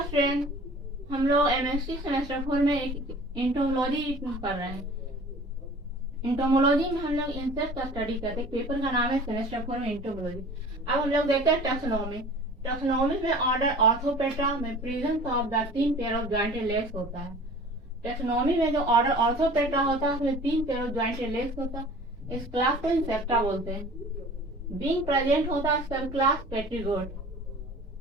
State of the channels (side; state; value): both; normal; correlation 0.44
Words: हम लोग MSc semester 4 में एक इंटोमोलॉजी पढ़ रहे हैं। इंटोमोलॉजी में हम लोग इंसेक्ट का स्टडी करते हैं। पेपर का नाम है सेमेस्टर 4 में इंटोमोलॉजी। अब हम लोग देखते हैं टैक्सोनॉमी। टैक्सोनॉमी में ऑर्डर ऑर्थोपेट्रा में presence of the 3 pair of jointed legs होता है। टैक्सोनॉमी में जो ऑर्डर ऑर्थोपेट्रा होता है उसमें 3 पेयर ऑफ जॉइंटेड लेग्स होता है। इस क्लास को इंसेक्टा बोलते हैं। बीइंग प्रेजेंट होता है सब class पेट्रीगोट